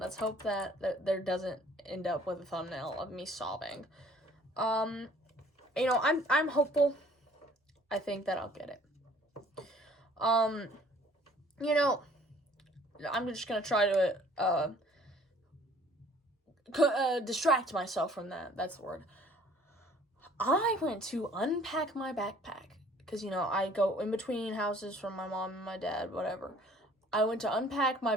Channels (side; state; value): both; normal; correlation 0.55